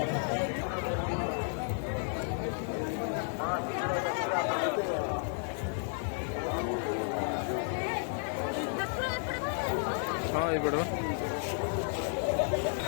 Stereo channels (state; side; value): silent; right; 55 dB below the other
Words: हाँ, ये बड़ा